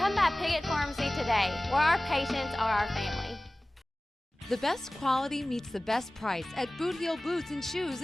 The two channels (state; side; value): normal; both; correlation 0.98